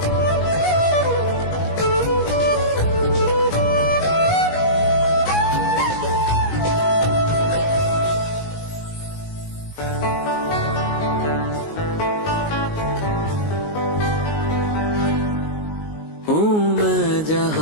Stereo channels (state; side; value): late; right; 19 ms